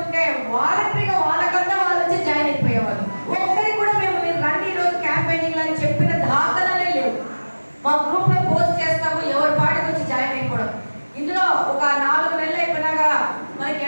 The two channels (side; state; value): both; inverted; correlation -1.00